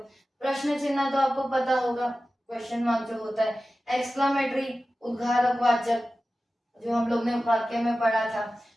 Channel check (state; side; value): normal; both; correlation 0.95